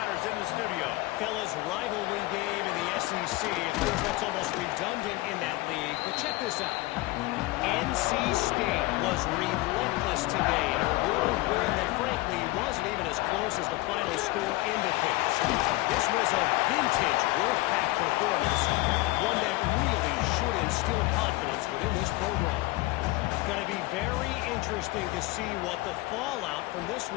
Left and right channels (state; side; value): quieter; right; 20.1 dB